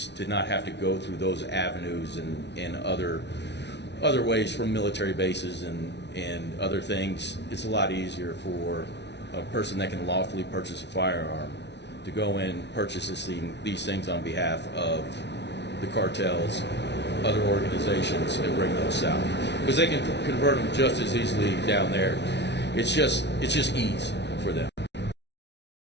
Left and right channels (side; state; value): right; late; 0.50 ms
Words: to not have to go through those avenues and other ways from military bases and other things. It's a lot easier for a person that can lawfully purchase a firearm to go in, purchase these things on behalf of the cartels, other organizations, and bring those south, because they can convert them just as easily down there. It's just ease for them.